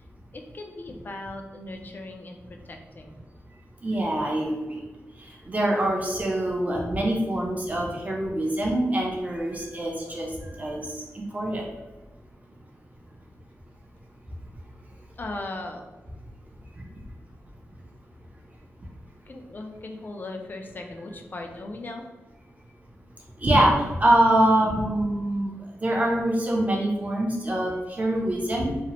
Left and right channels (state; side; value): normal; both; correlation 0.87